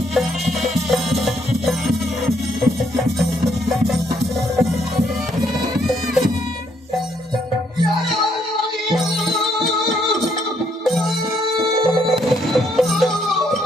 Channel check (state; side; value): normal; both; correlation 0.71